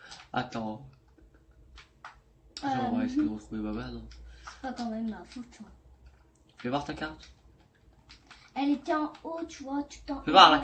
Attends. On va essayer de retrouver Baba, non? C'est pas quand même ma faute, tu vois. Fais voir ta carte. Elle était en haut, tu vois. Tu t'en. Fais voir la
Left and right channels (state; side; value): identical; both; correlation 1.00